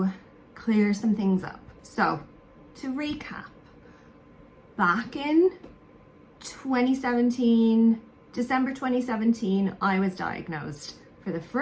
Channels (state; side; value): identical; both; correlation 1.00